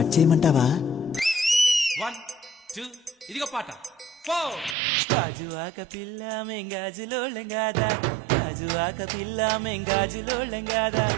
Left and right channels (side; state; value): left; drops out; at 4.8 s